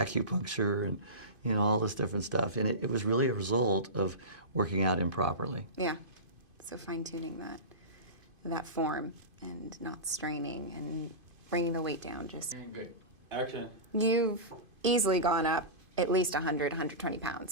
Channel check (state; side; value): late; left; 2.5 ms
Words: and, you know, all this different stuff. And it was really a result of working out improperly. Yeah. So fine-tuning that form and not straining and bringing the weight down. Just Good. Action. You've easily gone up at least 100, 120 pounds